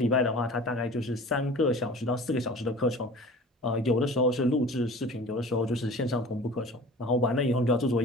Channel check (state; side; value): normal; both; correlation 0.42